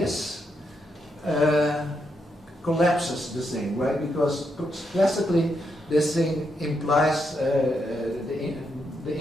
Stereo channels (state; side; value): normal; both; correlation 0.81